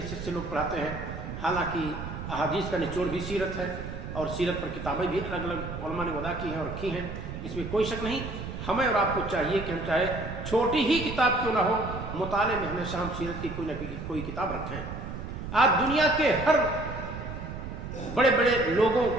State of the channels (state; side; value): noise; right; rumble, 8 dB below the sound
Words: سے لوگ پڑھاتے ہیں۔ حالانکہ احادیث کا نچوڑ بھی سیرت ہے، اور سیرت پر کتابیں بھی الگ الگ علماء نے وضع کی ہیں اور رکھی ہیں، اس میں کوئی شک نہیں۔ ہمیں اور آپ کو چاہیے کہ ہم چاہے چھوٹی ہی کتاب کیوں نہ ہو، مطالعے میں ہمیشہ ہم سیرت کی کوئی نہ کوئی کتاب رکھیں۔ آج دنیا کے ہر بڑے بڑے لوگوں